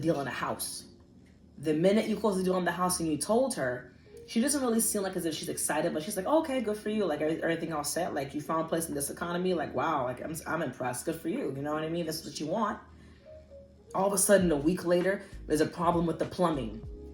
on a house. The minute you close the deal on the house and you told her, she doesn't really seem like as if she's excited, but she's like, oh, okay, good for you. Like everything all set. Like you found a place in this economy. Like, wow, like I'm impressed. Good for you. You know what I mean? That's what you want. All of a sudden, a week later, there's a problem with the plumbing.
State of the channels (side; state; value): both; identical; correlation 1.00